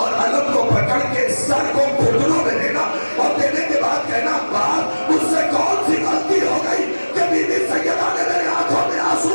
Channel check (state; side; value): inverted; both; correlation -1.00